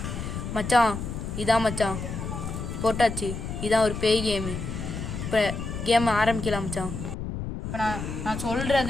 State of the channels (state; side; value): noise; left; rumble, 6 dB below the sound